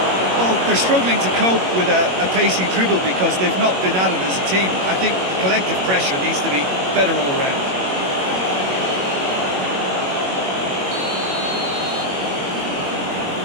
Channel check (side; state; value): left; late; 21 ms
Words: Well, they're struggling to cope with a pacey dribble because they've not been at it as a team. I think the collective pressure needs to be better all around.